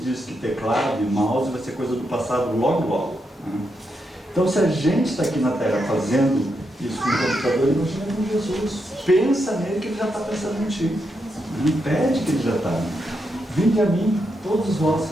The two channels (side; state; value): both; normal; correlation 0.83